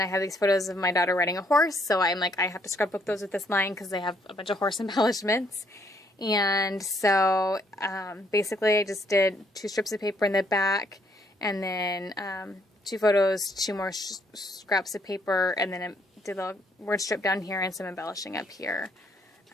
I have these photos of my daughter riding a horse, so I'm like, I have to scrapbook those with this line because they have a bunch of horse embellishments. And so basically I just did 2 strips of paper in the back, and then 2 photos, 2 more scraps of paper, and then I did a word strip down here and some embellishing up here.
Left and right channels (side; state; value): both; normal; correlation 0.69